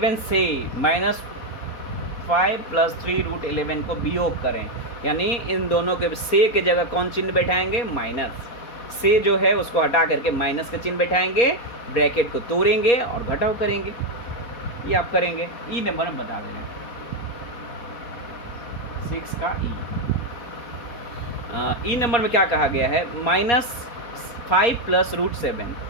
से माइनस 5 प्लस 3 रूट 11 को वियोग करें, यानी इन दोनों के से के जगह कौन चिन्ह बैठाएंगे, माइनस। से जो है उसको हटा करके माइनस का चिन्ह बैठाएंगे, ब्रैकेट को तोड़ेंगे और घटाव करेंगे। ये आप करेंगे। ई नंबर में बता देना 6 का ई नंबर में क्या कहा गया है, -5 प्लस रूट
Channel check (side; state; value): right; late; 4.2 ms